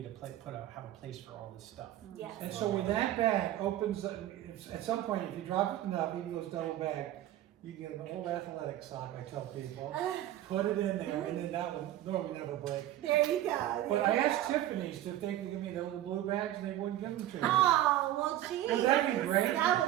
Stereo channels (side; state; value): left; quieter; 13.4 dB